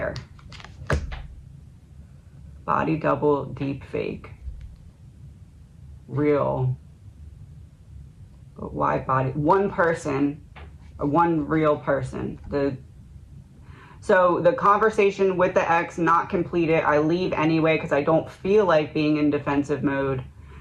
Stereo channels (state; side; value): identical; both; correlation 1.00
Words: Body double, deep fake. Real. But why body? One person, or one real person. So the conversation with the ex not completed, I leave anyway because I don't feel like being in defensive mode.